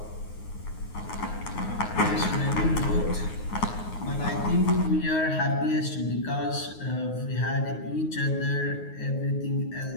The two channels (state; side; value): late; right; 9.5 ms